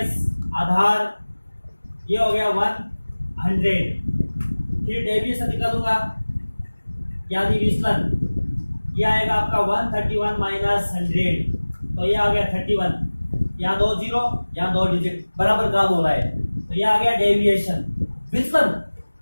आधार ये हो गया 100, फिर डेविएशन निकालूंगा यानी विचलन, ये आएगा आपका 131 माइनस 100 तो ये आ गया 31, यहाँ 2 जीरो यहाँ 2 डिजिट बराबर काम हो रहा है तो ये आ गया डेविएशन विचलन।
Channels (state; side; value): inverted; both; correlation -1.00